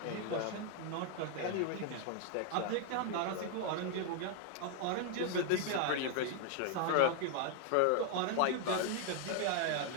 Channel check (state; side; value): different; both; correlation 0.00